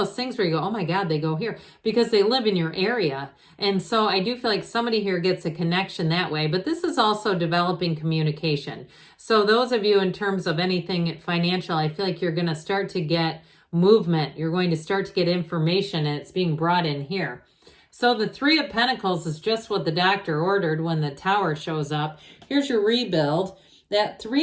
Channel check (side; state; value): both; identical; correlation 1.00